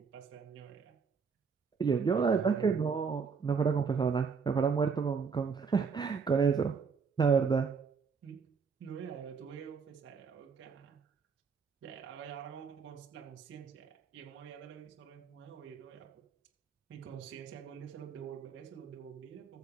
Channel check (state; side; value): quieter; left; 5.7 dB